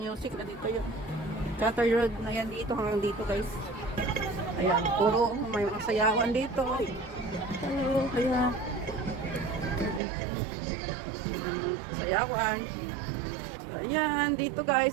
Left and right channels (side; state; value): left; drops out; at 10.0 s